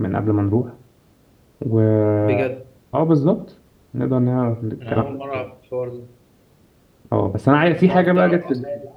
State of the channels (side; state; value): both; identical; correlation 1.00